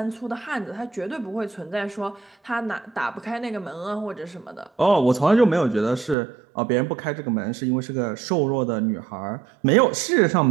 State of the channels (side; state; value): left; drops out; at 6.2 s